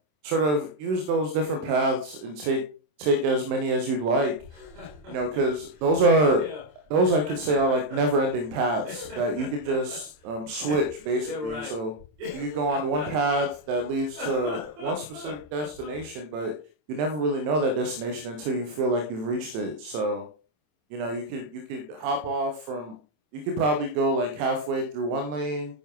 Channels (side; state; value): left; late; 27 ms